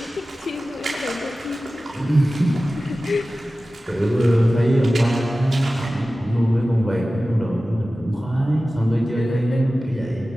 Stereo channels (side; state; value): both; normal; correlation 0.96